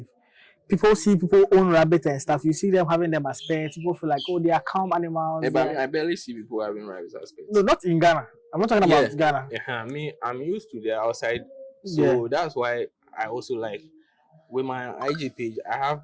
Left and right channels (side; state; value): both; identical; correlation 1.00